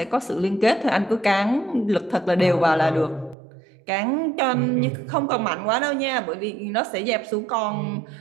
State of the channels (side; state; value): left; drops out; at 3.4 s